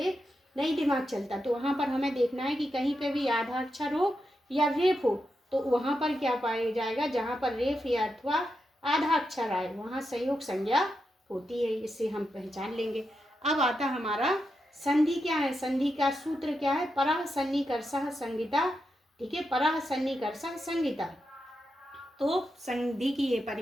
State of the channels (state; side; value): normal; both; correlation 0.86